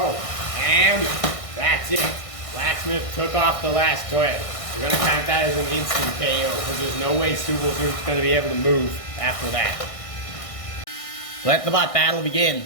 and that's it. Blacksmith took off the last thread. We're going to count that as an instant KO because there's no way Super Scoop's going to be able to move after that. Let the bot battle begin.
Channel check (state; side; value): late; right; 1.6 ms